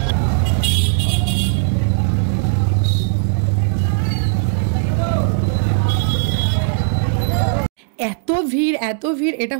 এত ভিড় এত ভিড়, এটা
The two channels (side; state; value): left; silent; digital silence